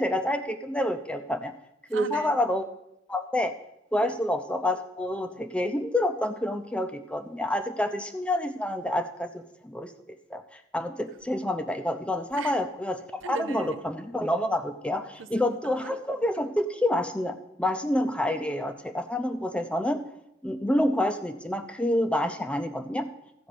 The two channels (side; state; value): both; normal; correlation 0.76